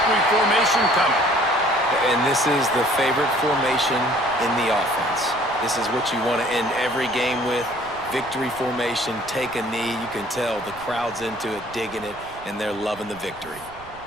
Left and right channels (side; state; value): right; noise; rumble, 21 dB below the sound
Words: formation coming. And this is the favorite formation in the offense. This is what you want to end every game with. Victory formation, take a knee. You can tell the crowd's into it, digging it, and they're loving the victory.